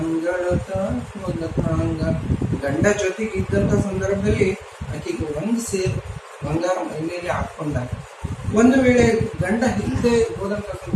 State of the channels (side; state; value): both; identical; correlation 1.00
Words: ಮೊದಲಾಂಗ. ಗಂಡ ಜೊತೆಗಿದ್ದಂತ ಸಂದರ್ಭದಲ್ಲಿ ಆಕೆಗೆ ಒಂದು ಸೇರು ಬಂಗಾರ ಮೈ ಮೇಲೆ ಹಾಕೊಂಡಾಗ, ಒಂದು ವೇಳೆ ಗಂಡ ಇಲ್ಲದೆ ಹೋದಂತ